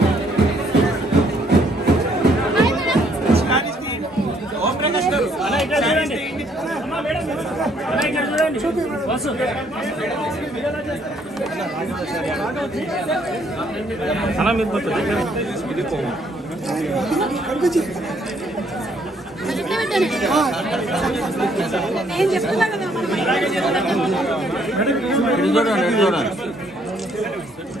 నేను చెప్తున్నా కదా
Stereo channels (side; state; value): both; normal; correlation 0.67